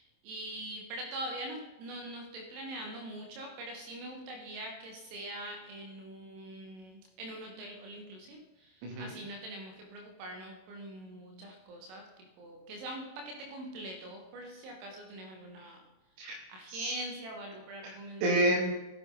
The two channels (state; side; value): late; left; 27 ms